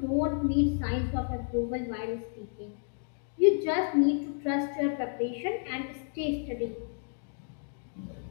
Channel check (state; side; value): silent; right; 57 dB below the other